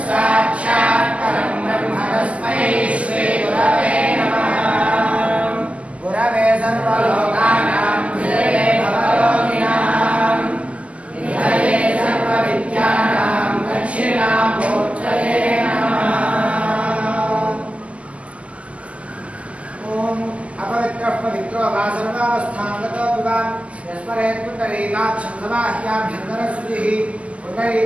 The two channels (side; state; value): left; late; 0.063 ms